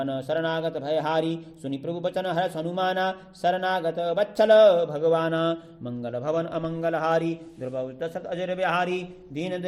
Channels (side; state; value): both; identical; correlation 1.00